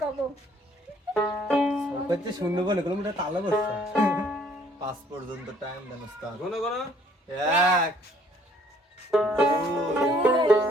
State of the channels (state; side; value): normal; both; correlation 0.61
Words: কব করতে শুনবো বলে কোনো মোটা তালা বসছে 5 পর্যন্ত টাইম দেন উস্তাদ কোন কোন 1